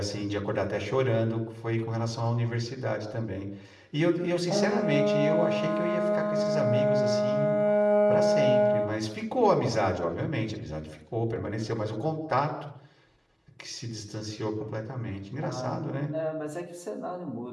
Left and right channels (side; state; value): both; identical; correlation 1.00